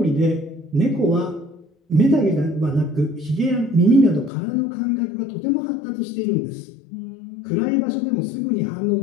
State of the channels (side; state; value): right; drops out; at 4.3 s